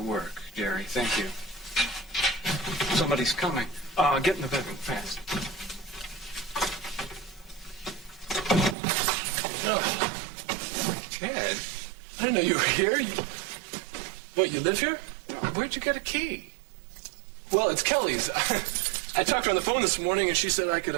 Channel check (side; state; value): left; drops out; at 8.8 s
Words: work, Jerry. Thank you. Somebody's coming. Get in the bedroom fast. Oh, Ted, I didn't know you were here. What, you live here? Where'd you get a key? Well, it's Kelly's. I talked to her on the phone this morning, and she said I could